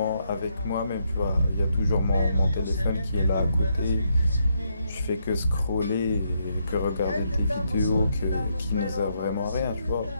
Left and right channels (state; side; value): inverted; both; correlation -0.77